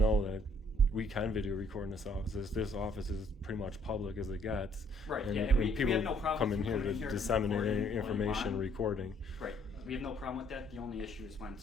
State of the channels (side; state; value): both; normal; correlation 0.64